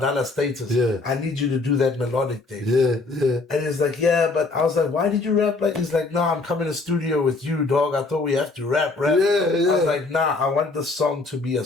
status. Yeah. I need you to do that melodic thing. Yeah, yeah. And he's like, yeah, but I was like, why did you rap like? He's like, no, I'm coming to studio with you, dog. I thought we have to rap. Yeah, yeah. I was like, nah, I want the song to be a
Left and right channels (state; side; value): quieter; right; 3.6 dB